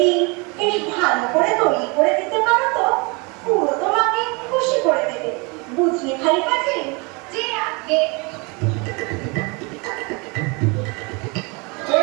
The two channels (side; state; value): left; quieter; 29.4 dB